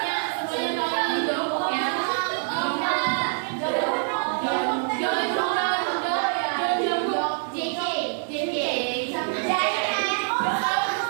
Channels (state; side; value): silent; left; 62 dB below the other